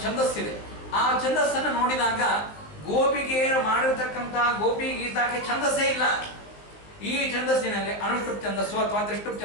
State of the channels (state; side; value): late; right; 19 ms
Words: ಛಂದಸ್ಸಿದೆ. ಆ ಛಂದಸ್ಸನ್ನು ನೋಡಿದಾಗ ಗೋಪಿಕೆಯರು ಮಾಡಿರ್ತಕ್ಕಂಥ ಗೋಪಿ ಗೀತಾಕ್ಕೆ ಛಂದಸ್ಸೇ ಇಲ್ಲ. ಈ ಛಂದಸ್ಸಿನಲ್ಲಿ ಅನುಷ್ಠುಪ್ ಛಂದಸ್ಸು ಅಥವಾ ತ್ರಿಷ್ಠುಪ್